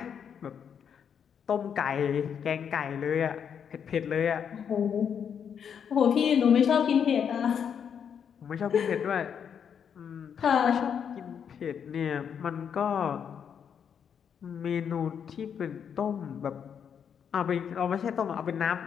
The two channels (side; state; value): right; quieter; 7.7 dB